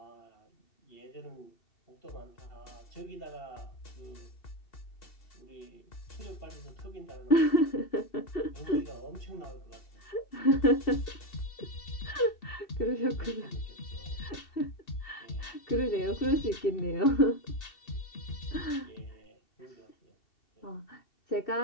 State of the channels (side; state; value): right; late; 2.7 ms